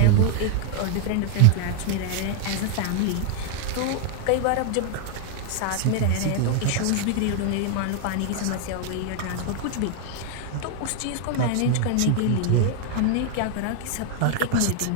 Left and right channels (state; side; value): different; both; correlation 0.00